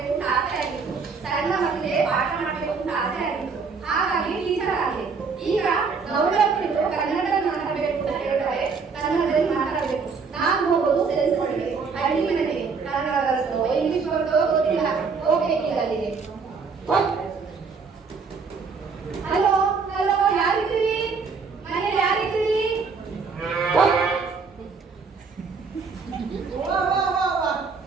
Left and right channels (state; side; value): quieter; left; 5.1 dB